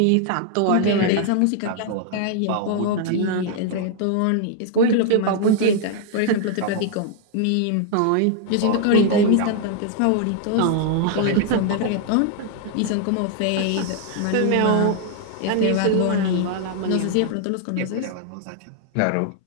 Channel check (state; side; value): different; both; correlation 0.00